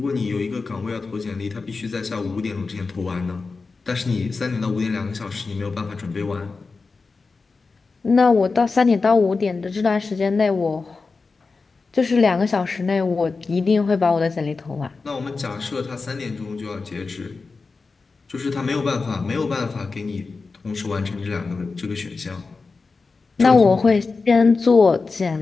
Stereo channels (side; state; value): right; quieter; 4.2 dB